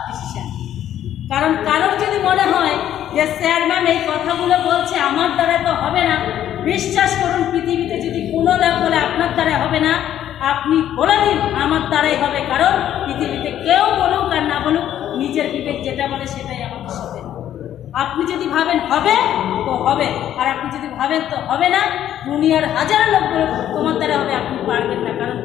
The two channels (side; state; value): right; quieter; 11.2 dB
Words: ডিসিশন। কারণ কারোর যদি মনে হয় যে স্যার ম্যাম এই কথাগুলো বলছে আমার দ্বারা তো হবে না, বিশ্বাস করুন পৃথিবীতে যদি কোনো লাভ বলে আপনার দ্বারা হবে না, আপনি বলে দিন আমার দ্বারাই হবে। কারণ পৃথিবীতে কেউ বলুক আর না বলুক, নিজের বিবেক যেটা বলে সেটাই আমাদের সাথে। আপনি যদি ভাবেন হবে তো হবে, আর আপনি যদি ভাবেন তো হবে না, দুনিয়ার হাজার লোক বলুক তোমার দ্বারা হবে, আপনি পারবেন না। কারণ